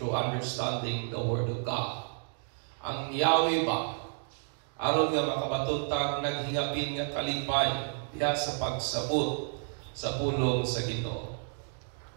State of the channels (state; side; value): silent; left; digital silence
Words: through understanding the Word of God. Ang Yahweh ba? Aron nga makabatuntang naghingapin nga kalipay diha sa pagsabot sa pulong sa Ginoo.